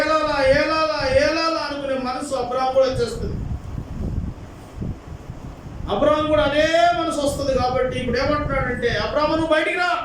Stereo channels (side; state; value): both; identical; correlation 1.00